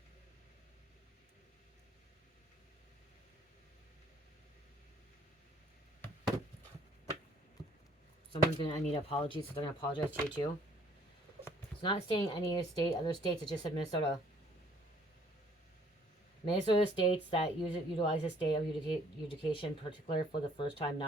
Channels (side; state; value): both; normal; correlation 0.60